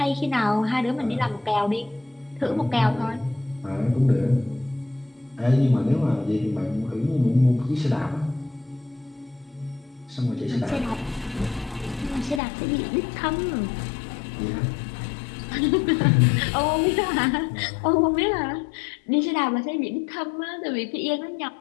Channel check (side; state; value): right; drops out; at 12.4 s